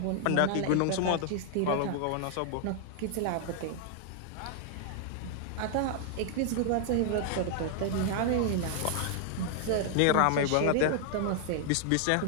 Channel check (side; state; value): both; different; correlation 0.00